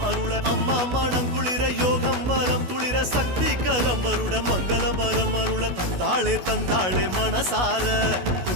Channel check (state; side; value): late; left; 16 ms